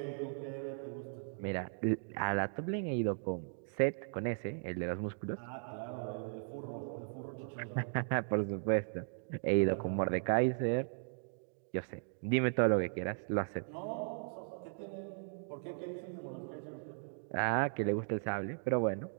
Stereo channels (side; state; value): left; silent; digital silence